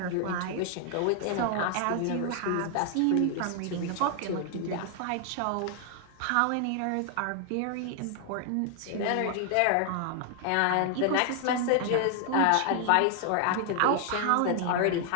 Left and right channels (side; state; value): both; different; correlation 0.00